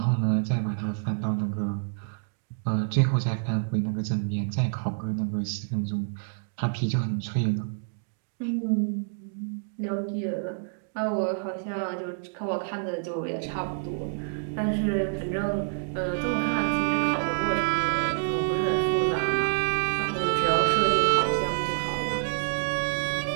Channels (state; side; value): silent; left; digital silence